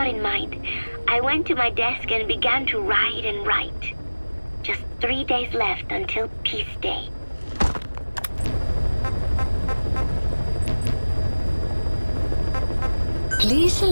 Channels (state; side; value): inverted; both; correlation -1.00